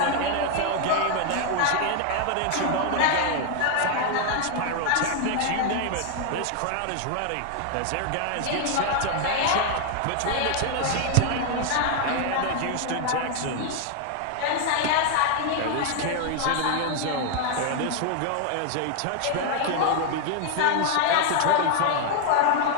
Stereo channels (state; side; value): different; both; correlation 0.00